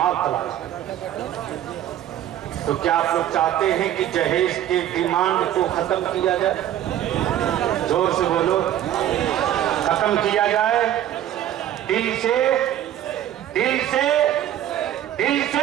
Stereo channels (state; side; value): quieter; left; 11.7 dB